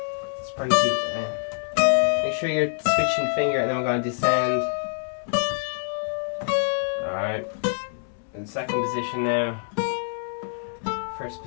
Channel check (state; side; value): silent; right; 61 dB below the other